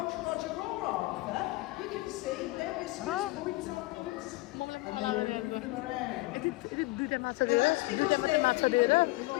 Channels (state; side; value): quieter; right; 21.0 dB